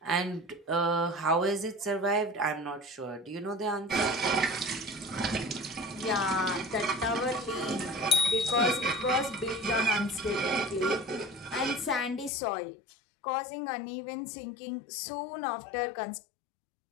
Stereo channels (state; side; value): drops out; right; at 12.3 s